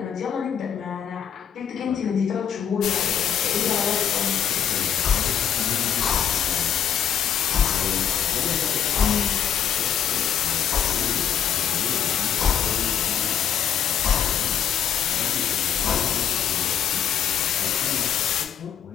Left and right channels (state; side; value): quieter; right; 8.9 dB